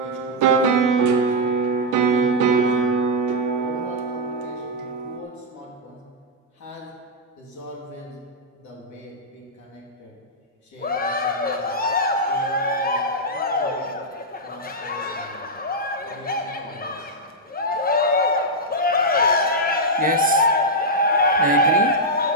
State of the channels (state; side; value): normal; both; correlation -0.05